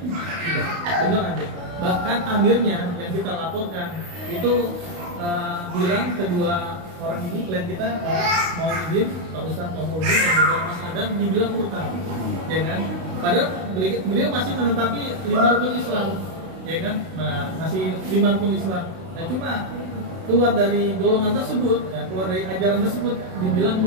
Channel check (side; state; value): left; late; 32 ms